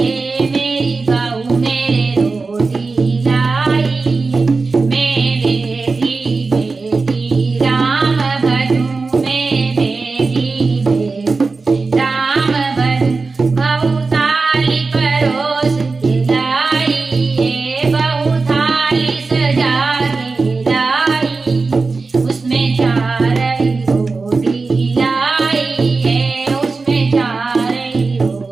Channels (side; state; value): left; quieter; 4.1 dB